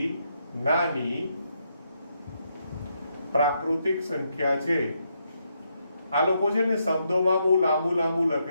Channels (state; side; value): inverted; both; correlation -0.79